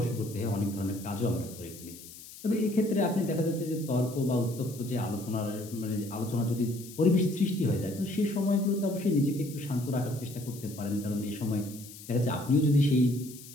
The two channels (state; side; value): noise; left; hiss, 16 dB below the sound